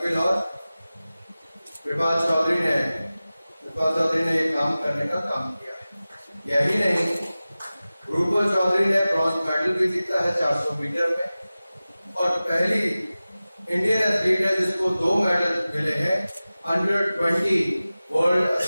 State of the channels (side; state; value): both; inverted; correlation -0.97